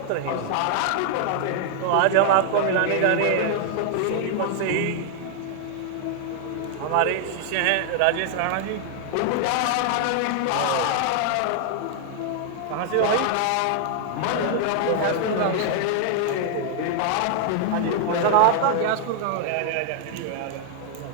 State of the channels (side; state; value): both; different; correlation 0.00